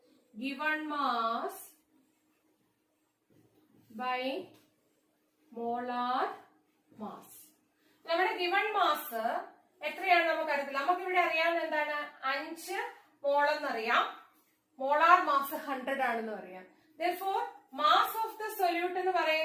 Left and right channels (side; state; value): both; identical; correlation 1.00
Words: Given mass by molar mass. നമ്മുടെ ഗിവൺ മാസ് എത്രയാണ് നമുക്ക് അറിയത്തില്ല. നമുക്ക് ഇവിടെ അറിയാവുന്ന എന്താണ്? 5 മോൾ എന്നറിയാം. മോളാർ മാസ് 100 ആണെന്ന് പറയാം. Therefore mass of the solute എന്ന്